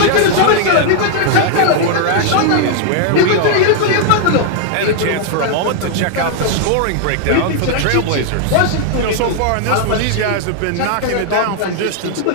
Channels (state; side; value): different; both; correlation 0.00